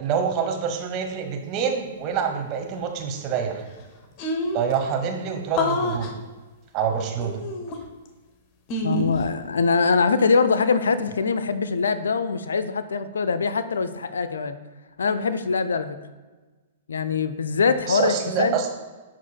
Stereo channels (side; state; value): both; inverted; correlation -0.52